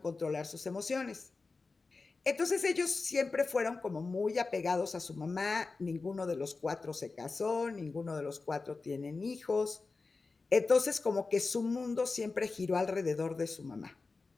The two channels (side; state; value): right; quieter; 4.0 dB